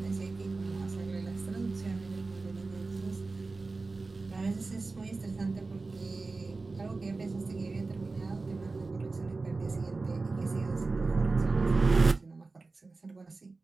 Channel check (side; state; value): left; quieter; 3.7 dB